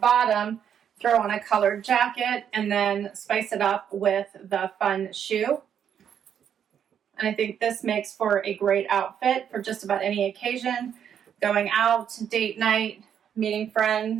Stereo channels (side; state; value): left; quieter; 8.7 dB